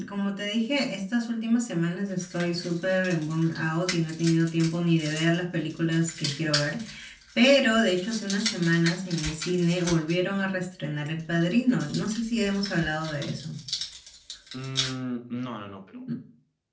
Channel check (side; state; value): both; identical; correlation 1.00